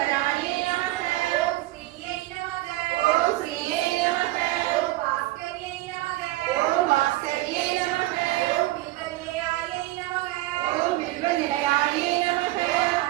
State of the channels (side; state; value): left; quieter; 18.0 dB